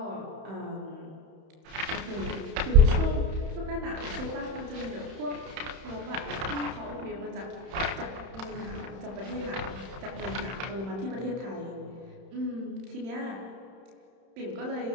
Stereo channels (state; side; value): late; left; 31 ms